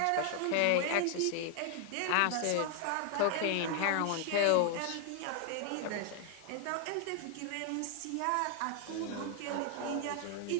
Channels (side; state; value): both; different; correlation 0.00